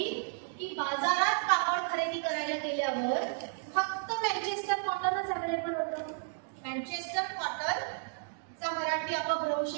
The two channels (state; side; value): silent; left; digital silence